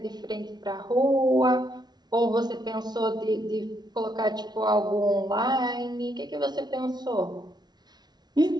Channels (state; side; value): late; left; 0.20 ms